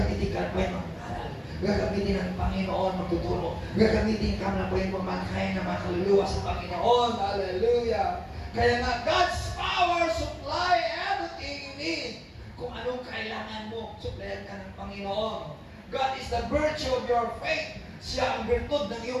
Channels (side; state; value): both; identical; correlation 1.00